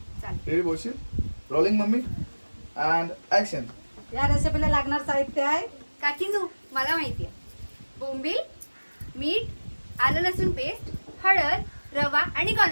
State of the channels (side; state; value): both; inverted; correlation -1.00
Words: चालेल. रेडी बोलशील रोलिंग मम्मी अँड ऍक्शन. या रेसिपीला लागणार साहित्य आहे. काकीनू मला माहिती आहे. बोंबील मीठ आलं लसूण पेस्ट हळद रवा आणि